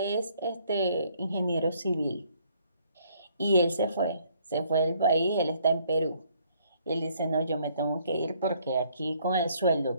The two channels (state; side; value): inverted; both; correlation -0.65